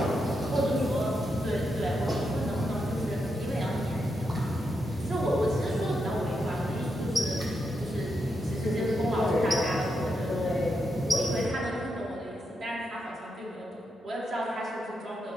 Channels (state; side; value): normal; both; correlation 0.84